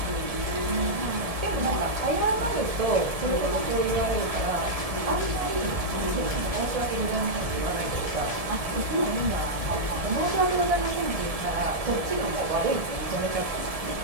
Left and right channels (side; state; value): left; late; 1.7 ms